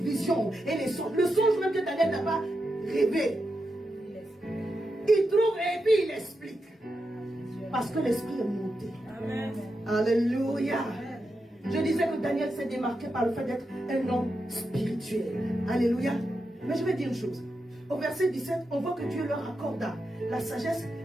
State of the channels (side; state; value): both; normal; correlation 0.87